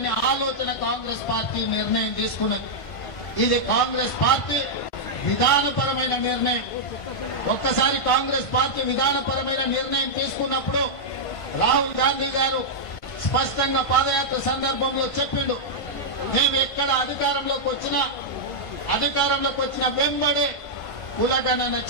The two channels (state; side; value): late; right; 1.5 ms